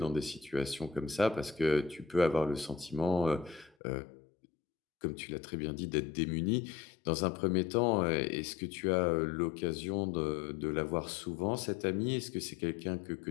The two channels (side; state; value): right; drops out; at 3.8 s